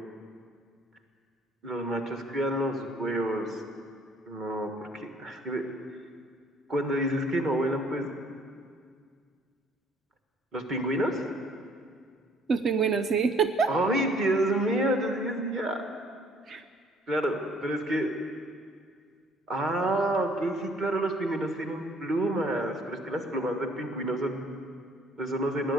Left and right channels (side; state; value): both; normal; correlation 0.59